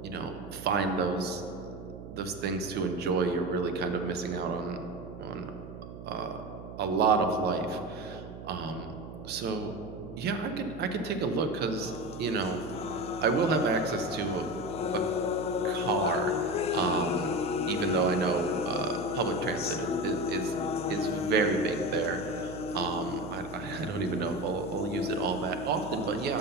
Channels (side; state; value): right; noise; hum, 12 dB below the sound